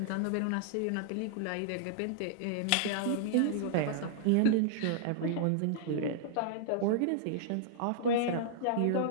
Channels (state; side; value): different; both; correlation -0.01